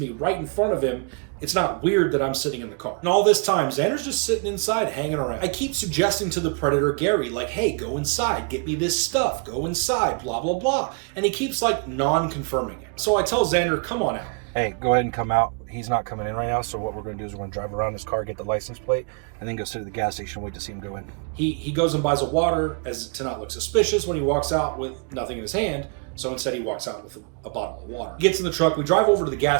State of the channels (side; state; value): left; quieter; 35.9 dB